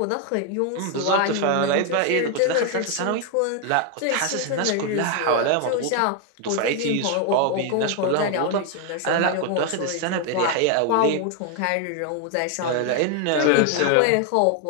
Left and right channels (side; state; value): both; different; correlation 0.01